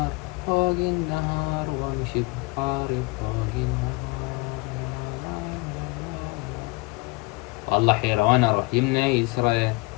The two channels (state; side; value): quieter; right; 25.8 dB